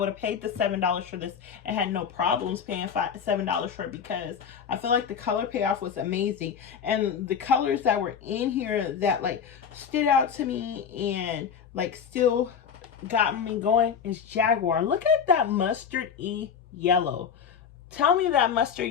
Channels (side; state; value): right; quieter; 7.2 dB